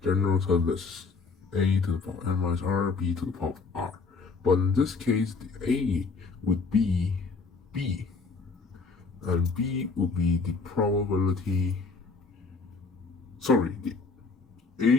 general term is a to the power n minus r, b to the power of r. But in this case, the a would be b. And b will be the probability, the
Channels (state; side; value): quieter; right; 4.4 dB